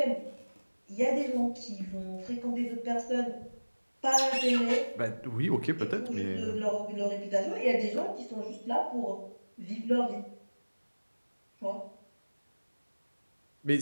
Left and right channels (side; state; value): both; inverted; correlation -1.00